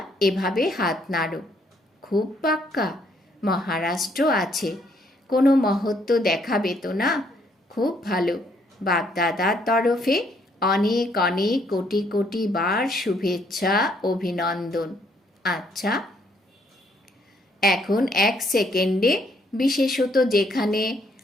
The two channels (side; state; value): both; normal; correlation 0.69